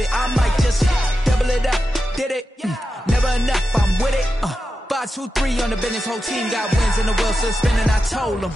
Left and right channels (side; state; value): both; normal; correlation 0.90